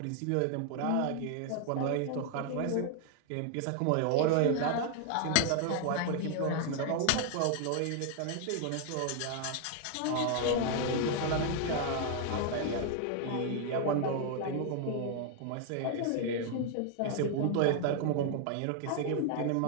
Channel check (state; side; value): different; both; correlation 0.00